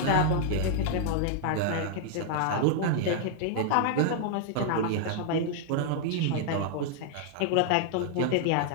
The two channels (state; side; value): different; both; correlation 0.00